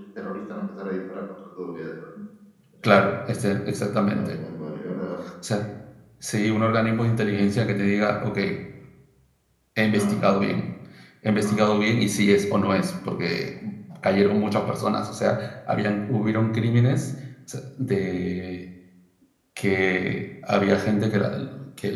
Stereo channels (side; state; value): both; identical; correlation 1.00